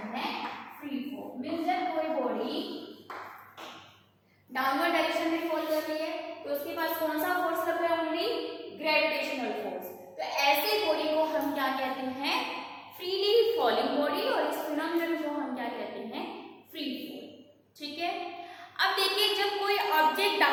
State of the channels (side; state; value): both; identical; correlation 1.00